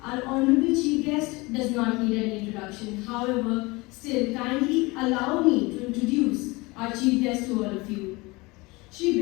Our honorable chief guest does not need any introduction. introduction. However, still kindly allow me to introduce our chief guest to all of you. Shri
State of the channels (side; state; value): right; quieter; 24.0 dB